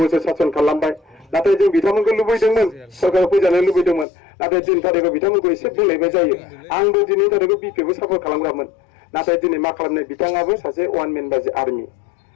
सासन खालामबाय नाथाय जों बिथांमोनखौ लुबैदोंमोन सरकाराव फैजानो लुबैदोंमन नाथाय दिन थारिखआव बिथांमोनखौ एसे बुंलायबाय जायो आंबो दिनै थारिखआव बिपिखौ सापर्ट खालामग्रामोन नाथाय दिनै मा खालामनो बिथाङाबो सासे वान मेन बादि आर्मि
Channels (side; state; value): right; drops out; at 4.0 s